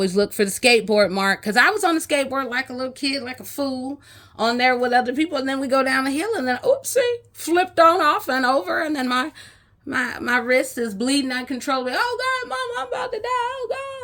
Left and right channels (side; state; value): both; identical; correlation 1.00